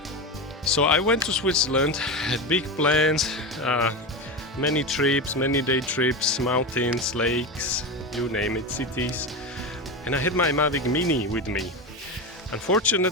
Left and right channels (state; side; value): normal; both; correlation 0.20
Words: So I went to Switzerland, had big plans, many trips, many day trips, mountains, lakes, you name it, cities, and I had my Mavic Mini with me.